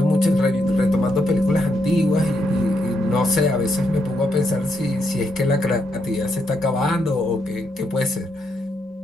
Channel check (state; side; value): normal; both; correlation 0.79